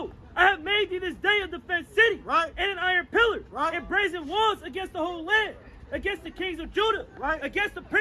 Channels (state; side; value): identical; both; correlation 1.00